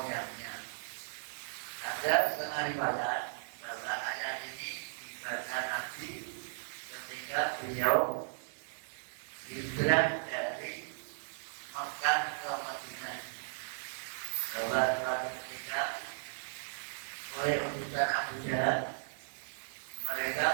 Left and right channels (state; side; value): silent; left; digital silence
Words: Ada setengah riwayat bahwa ayat ini dibaca Nabi ketika beliau di hijrah dari Makkah ke Madinah. Bahwa ketika oleh utusan Abu Jahal,